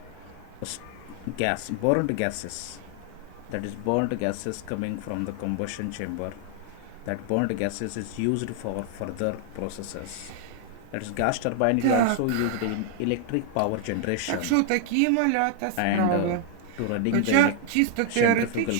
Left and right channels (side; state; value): both; different; correlation 0.00